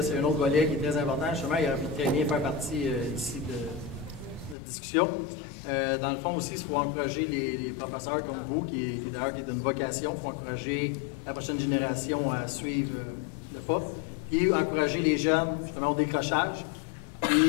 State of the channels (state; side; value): drops out; right; at 4.5 s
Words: c'est un autre volet qui est très important. Justement, il aurait pu très bien faire partie ici de la discussion. Dans le fond aussi, il faut encourager les professeurs comme vous, qui d'ailleurs qui est d'une vocation, il faut encourager la prochaine génération à suivre le pas, et encourager les jeunes justement au décrochage,